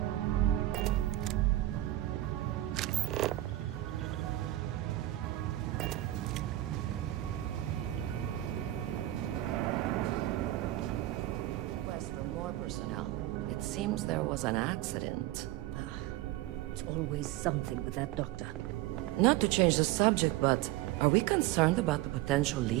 personnel. It seems there was an accident. It's always something with that doctor. Not to change the subject, but are we concerned about the potential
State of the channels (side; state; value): left; quieter; 15.7 dB